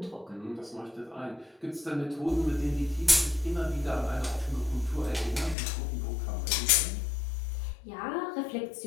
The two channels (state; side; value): drops out; right; at 5.6 s